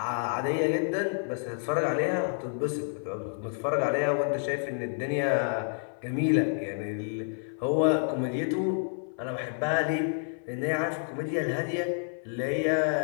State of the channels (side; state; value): right; silent; 58 dB below the other